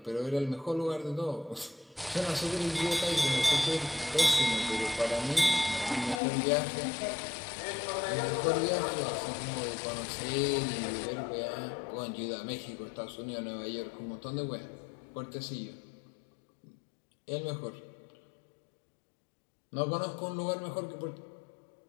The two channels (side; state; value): right; drops out; at 6.2 s